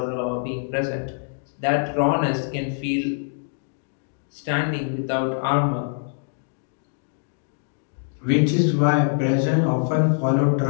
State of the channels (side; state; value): right; silent; digital silence